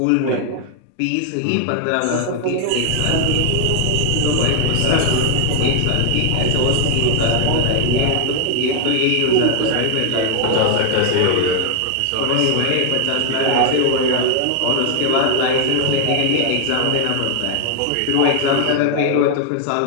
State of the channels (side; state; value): both; different; correlation 0.00